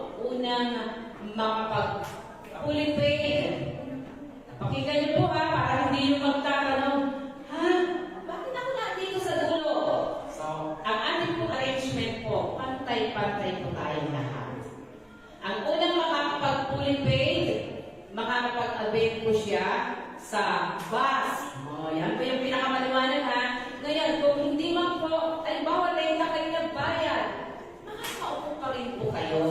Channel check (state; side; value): identical; both; correlation 1.00